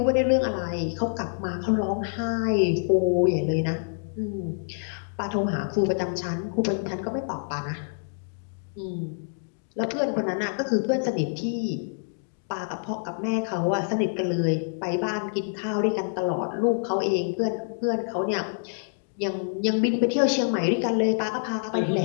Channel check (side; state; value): right; silent; digital silence